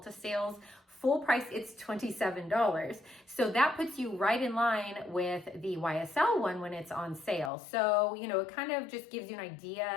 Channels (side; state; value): right; drops out; at 7.5 s